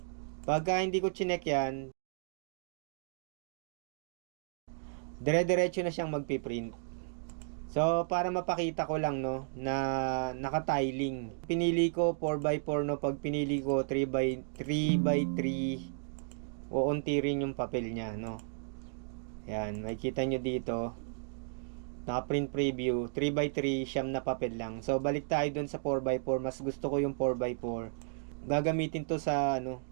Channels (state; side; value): silent; left; digital silence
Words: Pagka hindi ko chinek yan, dire-diretso na siyang magpiprint. So, para mapakita ko lang, no, na naka-tiling. Pinili ko 4x4, no. Pag pinili ko 3x3, uunti rin yung papel niya, no. Yan, makikita nyo dito. Naka-print preview. 3x3, siyam na papel lang. So, balik tayo dun sa 4x4. Mas gusto ko yung 4x4. Gagamitin to sa,